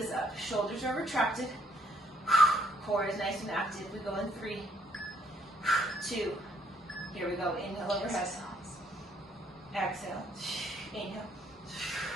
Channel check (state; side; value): normal; both; correlation 0.68